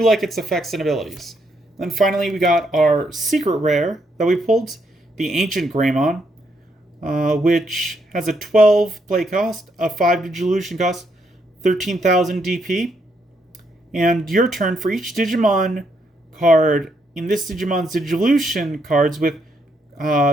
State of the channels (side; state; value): both; normal; correlation 0.76